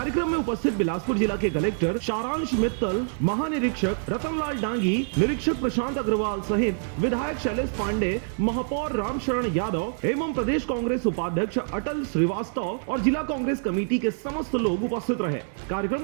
में उपस्थित बिलासपुर जिला के कलेक्टर सारांश मित्तल, महानिरीक्षक रतनलाल डांगी, निरीक्षक प्रशांत अग्रवाल सहित विधायक शैलेश पांडे, महापौर रामशरण यादव एवं प्रदेश कांग्रेस उपाध्यक्ष अटल श्रीवास्तव और जिला कांग्रेस कमेटी के समस्त लोग उपस्थित रहे। कार्यक्रम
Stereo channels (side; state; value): left; silent; digital silence